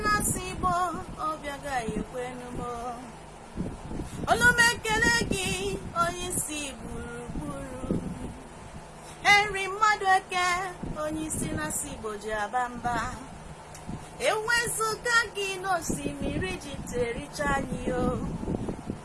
na-asị Igbo obi agaghị ekwenu m. Olu m ekele gị onye isi gburugburu. Henry Mmadueke onye isi na-asị Igbo ji aba mba. Ewezuga gị n'osimiri ji tericha anyị o.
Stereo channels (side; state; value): both; identical; correlation 1.00